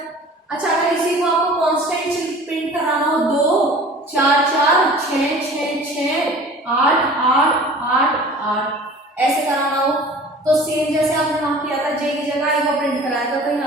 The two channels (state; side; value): normal; both; correlation 0.44